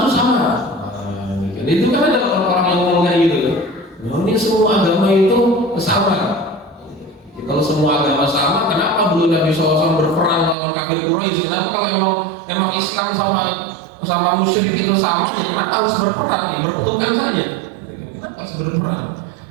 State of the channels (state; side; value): drops out; left; at 10.6 s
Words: itu sama. Itu kan ada orang-orang yang ngomong kayak gitu. Ini semua agama itu sama. Kalau semua agama sama, kenapa dulu Nabi SAW berperang lawan kafir Quraisy? Kenapa kalau emang Islam sama musyrik itu sama, kenapa harus berperang? Berpetukan saja. Kenapa harus berperang?